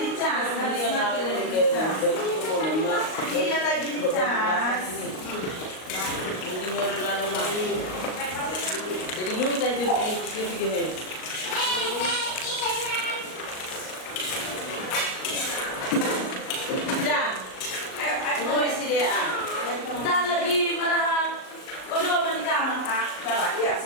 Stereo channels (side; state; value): right; late; 38 ms